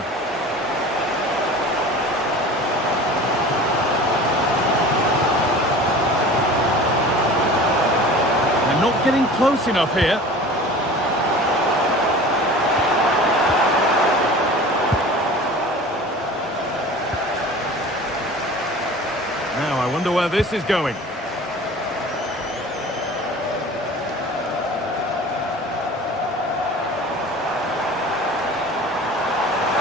They're not getting close enough here. Now, I wonder where this is going.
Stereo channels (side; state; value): both; normal; correlation 0.40